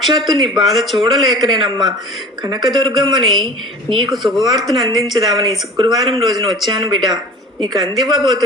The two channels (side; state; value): both; normal; correlation 0.41